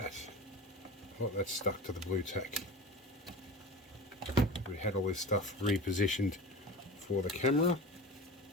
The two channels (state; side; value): normal; both; correlation 0.33